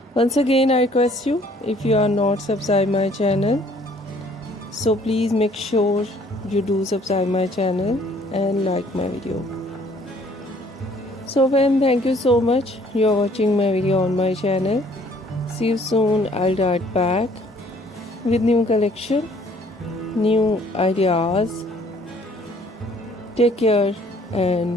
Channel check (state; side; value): normal; both; correlation 0.59